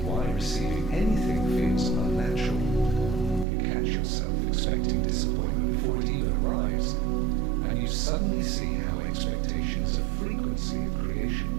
why receiving anything feels unnatural. You catch yourself expecting disappointment before it even arrives, and you suddenly see how expectation is a frequency of creation.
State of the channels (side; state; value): left; drops out; at 3.5 s